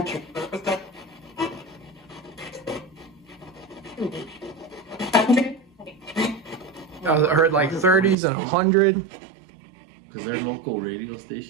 I heard like 30s and 100. Because our local radio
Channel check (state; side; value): drops out; left; at 8.2 s